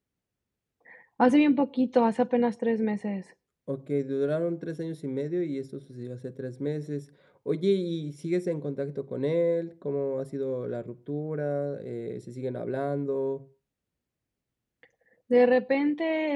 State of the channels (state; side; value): identical; both; correlation 1.00